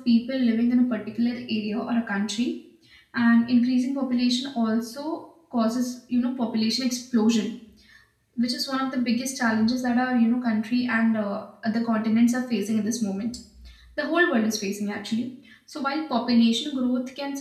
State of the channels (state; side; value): identical; both; correlation 1.00